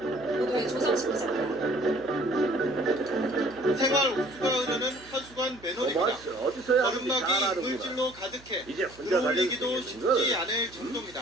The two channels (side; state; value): right; noise; hum, 23 dB below the sound